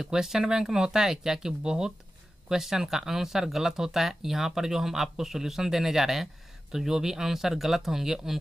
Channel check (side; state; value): both; normal; correlation 0.93